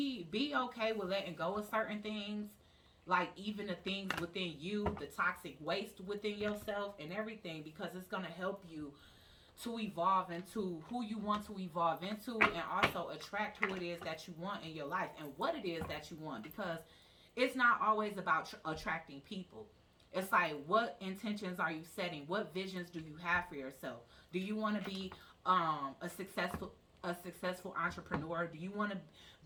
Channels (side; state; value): both; identical; correlation 1.00